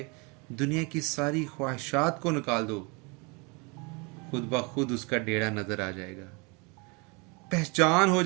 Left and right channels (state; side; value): quieter; left; 30.2 dB